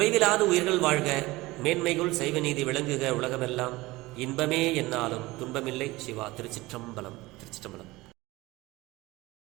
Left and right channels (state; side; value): quieter; left; 20.2 dB